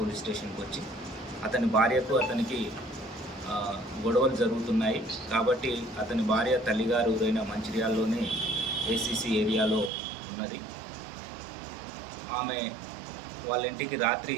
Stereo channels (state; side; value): drops out; left; at 9.9 s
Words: స్టేషన్కి వచ్చి అతని భార్యకు అతనికి గొడవలు జరుగుతున్నాయి కాబట్టి అతని భార్య తల్లిగారు ఊరైన మంచిర్యాలలోనే ఏసీసీ ఏరియాలో ఉన్నది. ఆమె వాళ్ళ ఇంటికి రాత్రి